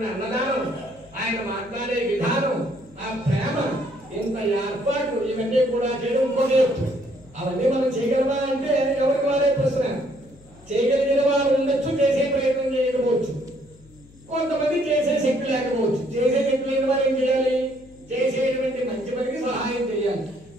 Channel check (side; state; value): left; noise; hum, 25 dB below the sound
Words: అన్నదానం, ఆయన మాట్లాడే విధానం, ఆ ప్రేమ, ఇంత ఏర్పాటు ఇవన్నీ కూడా చేయడం ఇంకొక ఎత్తు. అవన్నీ మనం చేయగలమా అంటే ఎవరికి వారే ప్రశ్న. చేయగలిగిన వారు ఉండొచ్చు, చేసే ప్రయత్నం చేయకపోవచ్చు, కొంతమంది చేసే శక్తి లేకపోవచ్చు. చేసే శక్తి లేని వారు ఏం చేయాలి? చేసేటువంటి మంచి పనికి సహాయం చేయాలి.